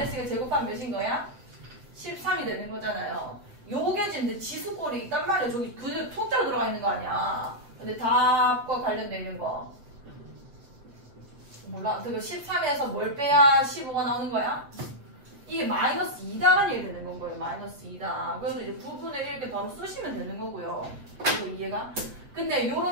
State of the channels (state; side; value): late; left; 7.2 ms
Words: 제곱하면 몇인 거야? 13이 되는 거잖아요. 요게 지금 지수꼴이 있단 말이야. 저기 그냥 통째로 들어가 있는 거 아니야. 근데 답과 관련돼 있는 거. 몰라. 그 13에서 뭘 빼야 15가 나오는 거야? 이게 마이너스 2다라는 얘기 되는 건 거예요. 마이너스 2다. 그래서 이제 부분을 이렇게 바로 쓰시면 되는 거고요. 이거 이해가? 근데